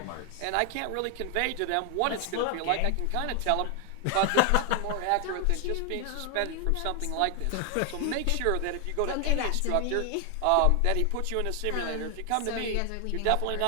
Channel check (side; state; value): both; different; correlation 0.00